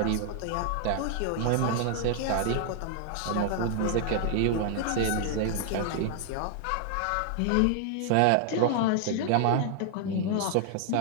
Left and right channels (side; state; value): both; different; correlation 0.00